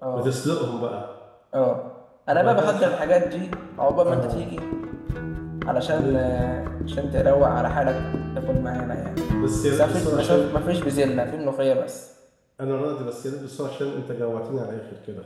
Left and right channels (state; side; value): identical; both; correlation 1.00